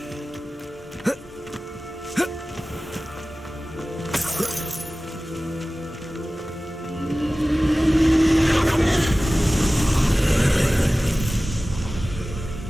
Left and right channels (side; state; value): both; normal; correlation 0.97